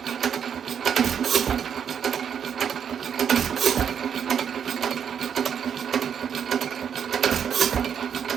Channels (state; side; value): quieter; left; 7.9 dB